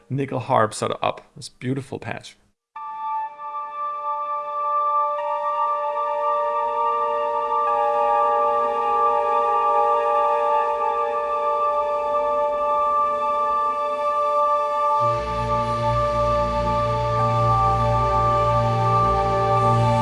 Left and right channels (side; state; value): both; identical; correlation 1.00